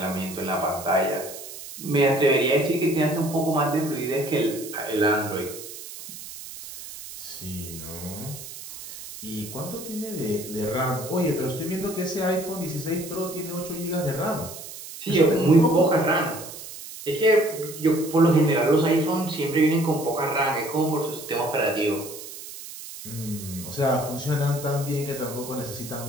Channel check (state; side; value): noise; right; hiss, 12 dB below the sound